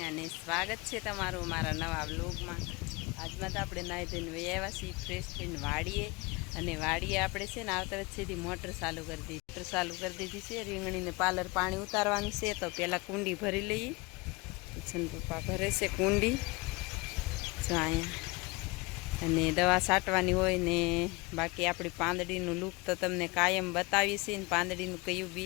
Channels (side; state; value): right; quieter; 25.3 dB